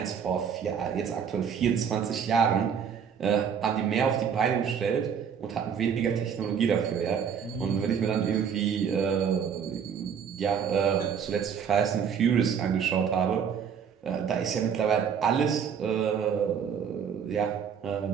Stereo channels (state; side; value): quieter; left; 7.4 dB